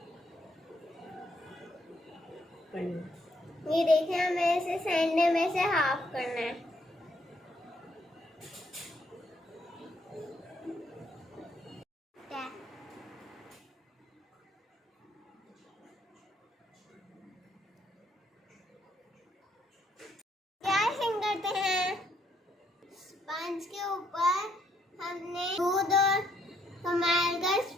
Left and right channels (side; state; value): both; normal; correlation 0.72